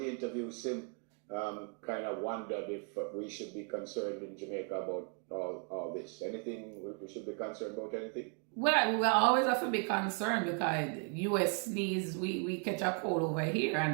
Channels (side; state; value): left; quieter; 39.2 dB